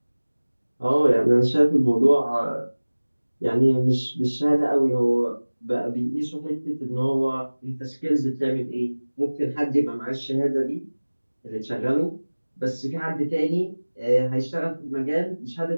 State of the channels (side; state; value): both; inverted; correlation -1.00